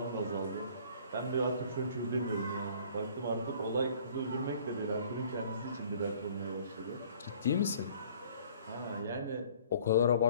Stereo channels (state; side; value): inverted; both; correlation -0.53